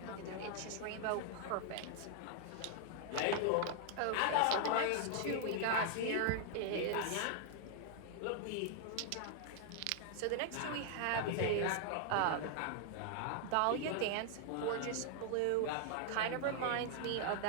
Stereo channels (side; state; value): both; different; correlation 0.00